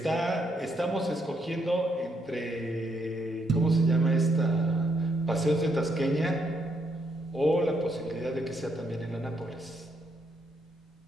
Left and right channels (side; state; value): both; normal; correlation 0.75